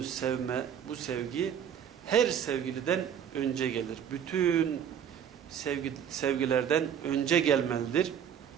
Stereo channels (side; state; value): left; quieter; 8.6 dB